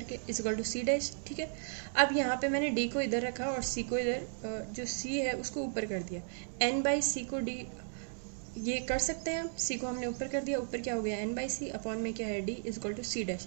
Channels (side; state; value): left; silent; digital silence